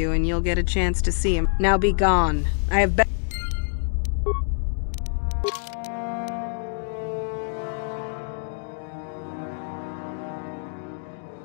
and you'll get a chance to see him. Now be gone. I have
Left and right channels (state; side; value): silent; right; digital silence